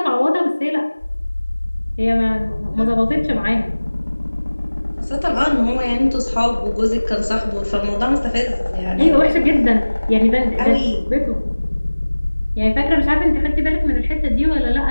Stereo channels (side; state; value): both; inverted; correlation -1.00